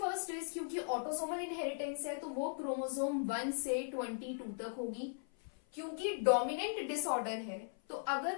is, क्योंकि ऑटोजोमल इनहेरिटेंस है तो वो क्रोमोसोम 1 से 22 तक होगी. क्योंकि डोमिनेंट डिसऑर्डर है तो अगर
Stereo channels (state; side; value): silent; right; 52 dB below the other